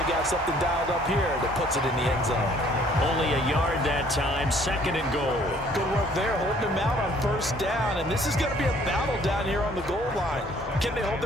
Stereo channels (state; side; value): normal; both; correlation 0.59